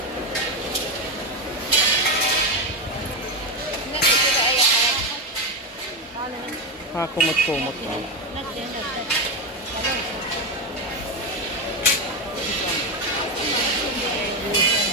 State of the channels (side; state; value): both; normal; correlation 0.11